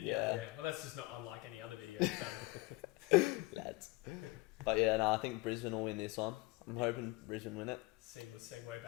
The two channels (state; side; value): quieter; right; 22.6 dB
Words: Yeah. you? Yeah. Well, that's just not unlike any other video you've done. Lads. But yeah, no, I think Brisbane will win this one. I'm hoping Brisbane win it. Seamless segue